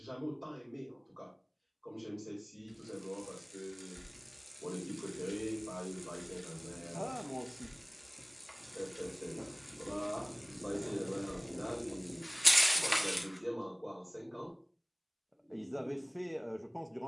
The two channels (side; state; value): both; identical; correlation 1.00